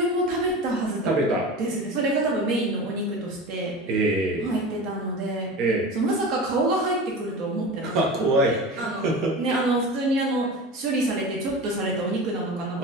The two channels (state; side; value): normal; both; correlation 0.31